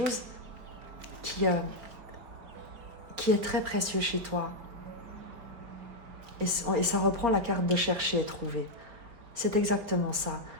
qui est très précieux chez toi. Et ça reprend la carte de chercher et trouver. C'est exactement ça.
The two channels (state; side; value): late; left; 4.4 ms